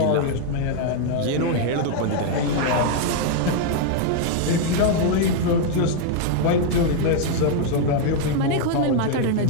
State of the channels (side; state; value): both; different; correlation 0.00